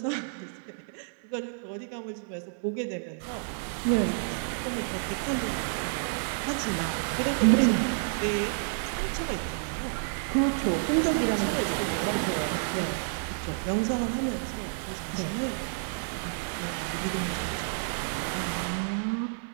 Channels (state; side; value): silent; left; digital silence